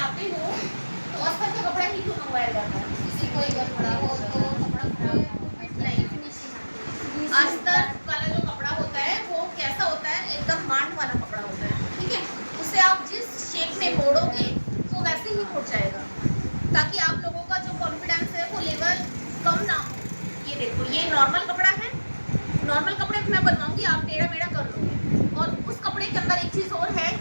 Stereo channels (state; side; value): inverted; both; correlation -1.00